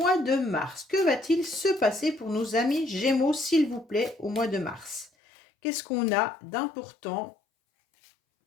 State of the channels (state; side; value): drops out; right; at 5.1 s